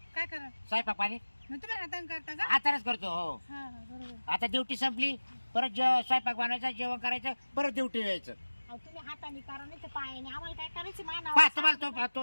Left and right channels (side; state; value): both; inverted; correlation -1.00